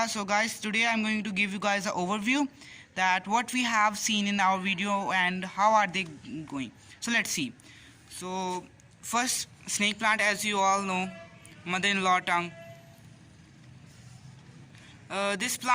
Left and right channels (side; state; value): both; identical; correlation 1.00